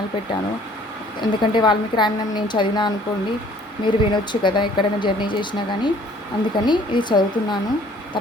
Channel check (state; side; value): normal; both; correlation 0.56